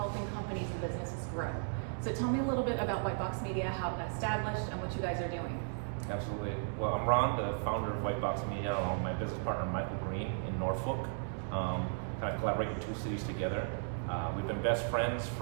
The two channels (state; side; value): silent; left; digital silence